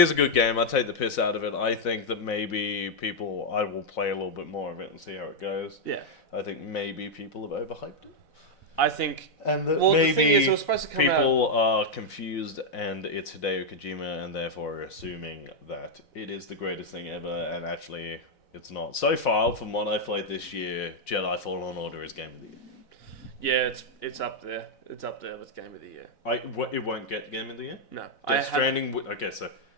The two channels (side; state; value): right; late; 4.0 ms